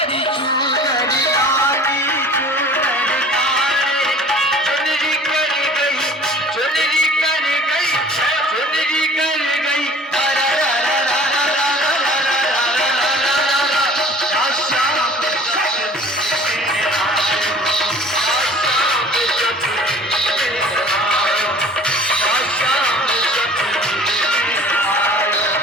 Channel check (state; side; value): normal; both; correlation 0.47